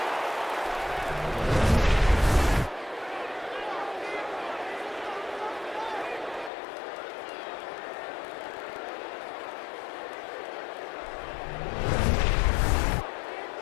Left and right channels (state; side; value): drops out; right; at 6.5 s